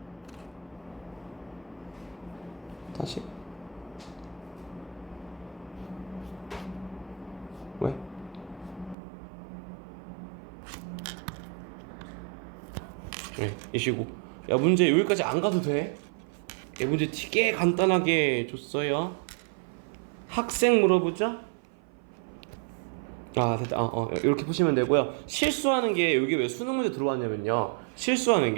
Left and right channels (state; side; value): drops out; left; at 9.0 s